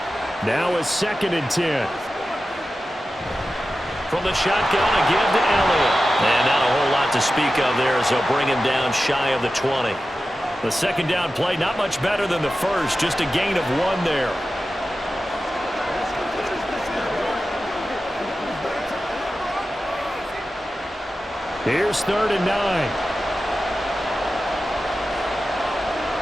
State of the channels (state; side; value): normal; both; correlation 0.93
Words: Now a 2nd and 10. From the shotgun again to Elliott. And not a whole lot to speak of there as they'll bring him down shy of the 20. The second down play not much better than the first. Just a gain of 1 there. Here's 3rd and 9.